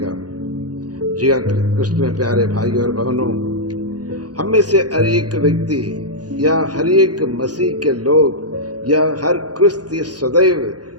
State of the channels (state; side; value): late; left; 0.69 ms